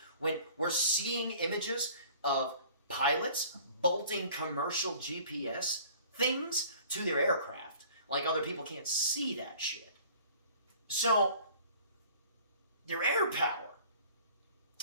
When we're seeing images of pilots bolting commercial GPS things to their aircraft, like other people can't see that shit. So, their air power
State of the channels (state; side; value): inverted; both; correlation -0.50